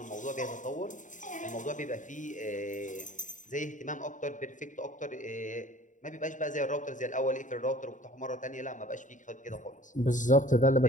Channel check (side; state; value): right; late; 0.37 ms